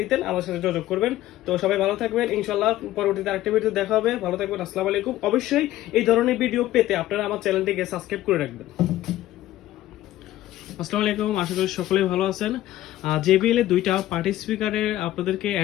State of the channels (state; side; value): quieter; right; 14.7 dB